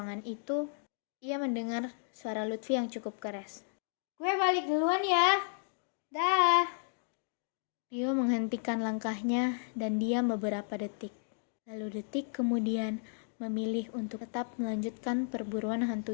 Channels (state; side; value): silent; right; digital silence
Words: itu, ia mendengar suara Lutfi yang cukup keras. Gue balik duluan ya. Dah. Rio menghentikan langkahnya dan diam beberapa detik. Lalu detik kemudian memilih untuk tetap melanjutkan perburuan